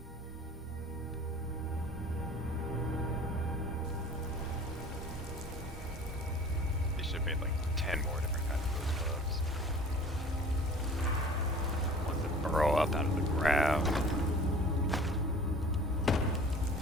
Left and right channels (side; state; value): both; normal; correlation 0.45